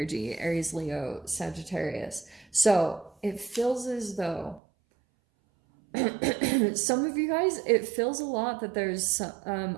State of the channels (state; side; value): drops out; left; at 4.6 s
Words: Aries, Leo, Sagittarius. So it feels as though some of you guys, it feels a lot that there's a